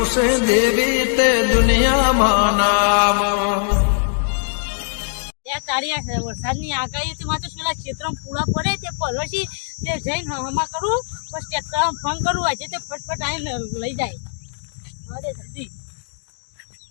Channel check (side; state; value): right; silent; digital silence